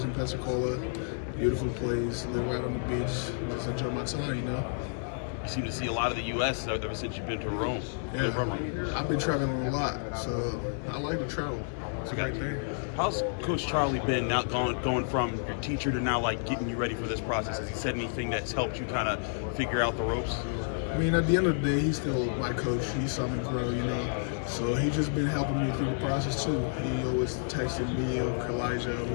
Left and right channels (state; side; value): silent; right; digital silence